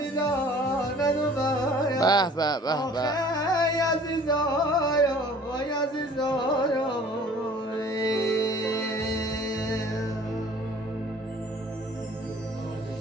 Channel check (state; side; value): normal; both; correlation 0.50